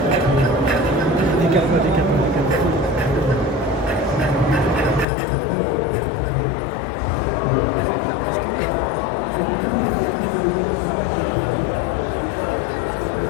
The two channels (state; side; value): drops out; right; at 5.1 s